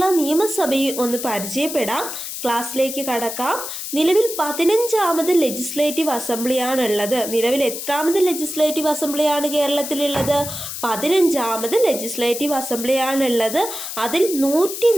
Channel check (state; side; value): noise; left; hiss, 7 dB below the sound